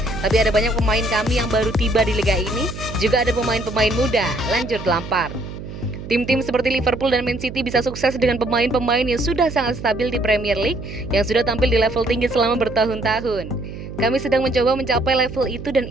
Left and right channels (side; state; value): right; noise; hum, 11 dB below the sound